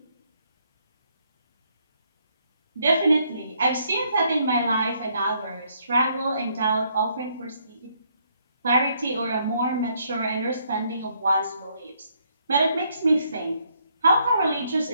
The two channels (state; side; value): inverted; both; correlation -0.71